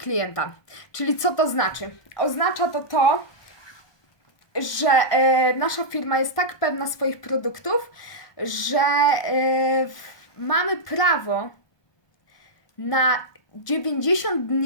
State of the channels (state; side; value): late; right; 1.2 ms